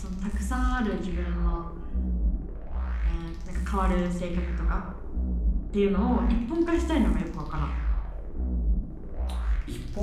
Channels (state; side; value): identical; both; correlation 1.00